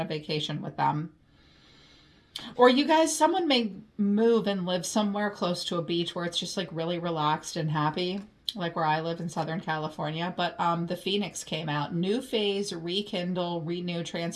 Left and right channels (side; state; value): both; identical; correlation 1.00